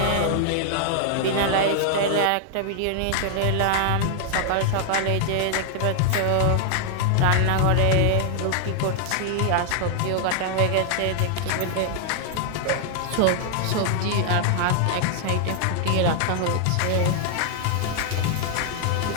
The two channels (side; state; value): both; different; correlation 0.00